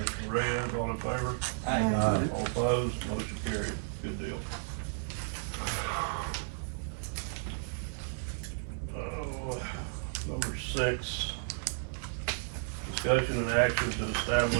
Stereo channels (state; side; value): silent; left; digital silence